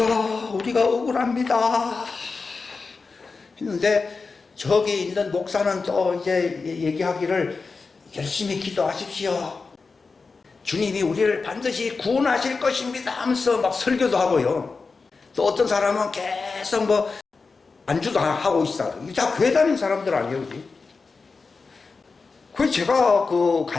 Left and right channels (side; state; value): right; quieter; 4.4 dB